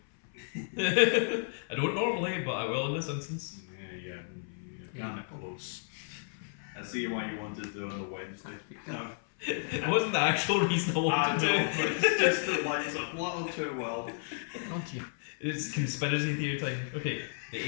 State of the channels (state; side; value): silent; right; 56 dB below the other